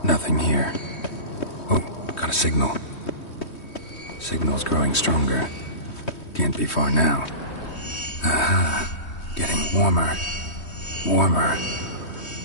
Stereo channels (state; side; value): late; right; 3.2 ms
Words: Nothing here. Oh, got a signal. Signal's growing stronger. Can't be far now. Aha. Getting warmer. Warmer.